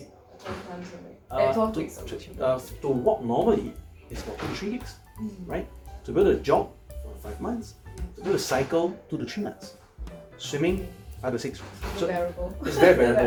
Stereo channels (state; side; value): identical; both; correlation 1.00